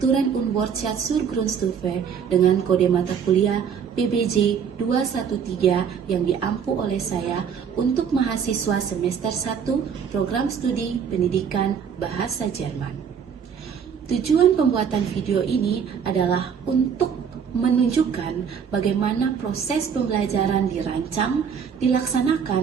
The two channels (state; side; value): quieter; left; 7.2 dB